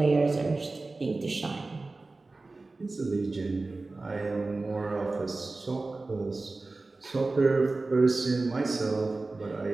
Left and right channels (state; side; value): quieter; left; 3.4 dB